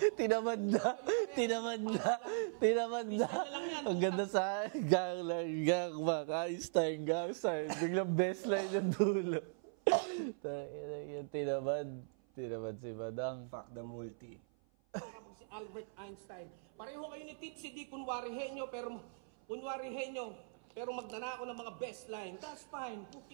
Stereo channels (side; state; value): left; silent; 52 dB below the other